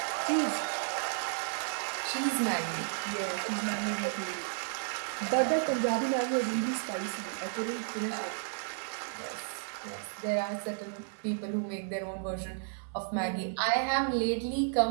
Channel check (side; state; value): left; silent; 56 dB below the other